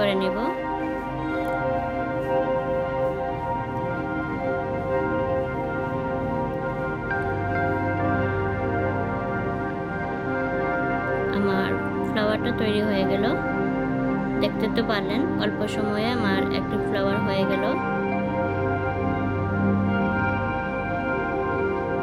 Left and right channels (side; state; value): both; identical; correlation 1.00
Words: নেব। আমার ফ্লাওয়ারটা তৈরি হয়ে গেল। দেখতে তো পারলেন অল্প সময়ে আমার একটা ফ্লাওয়ার হয়ে গেল।